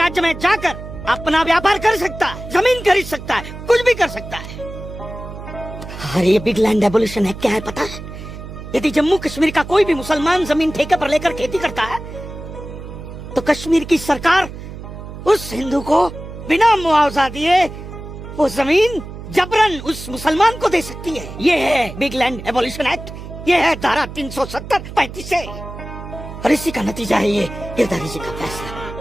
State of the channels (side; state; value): right; noise; hum, 11 dB below the sound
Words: में जाकर अपना व्यापार कर सकता है, जमीन खरीद सकता है, कुछ भी कर सकता है। अरे ये बिग लैंड एबोल्यूशन है, क्या है पता है? यदि जम्मू कश्मीर का कोई भी मुसलमान जमीन ठेके पर लेकर खेती करता है तो कश्मीर की सरकार उस हिंदू को बिना मुआवजा दिए वो जमीन जबरन उस मुसलमान को दे सकती है। ये है बिग लैंड एबोल्यूशन एक्ट, ये है धारा 370-35 से। और इसी का नतीजा है ये गिरधारी जी का फैसला।